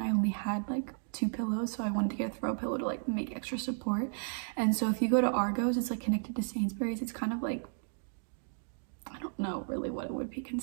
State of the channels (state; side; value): silent; left; digital silence